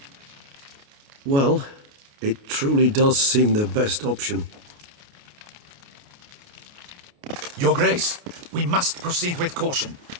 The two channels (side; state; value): left; late; 29 ms